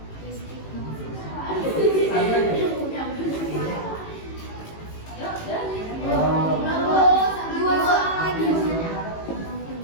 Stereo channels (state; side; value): late; right; 18 ms